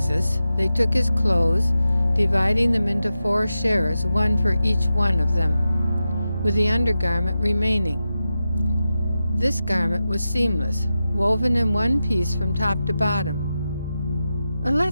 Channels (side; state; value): both; inverted; correlation -0.91